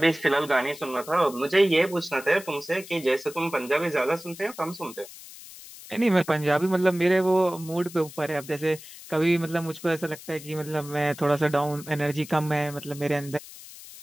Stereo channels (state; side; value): noise; left; hiss, 16 dB below the sound